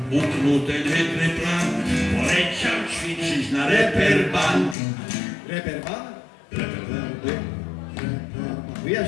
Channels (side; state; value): right; drops out; at 4.8 s